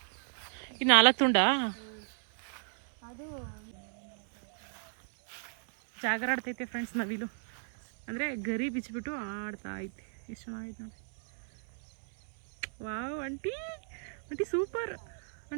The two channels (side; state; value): left; silent; 55 dB below the other